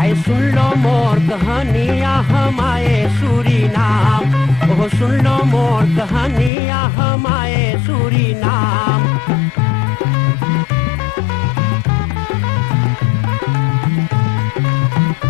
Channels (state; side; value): drops out; right; at 6.5 s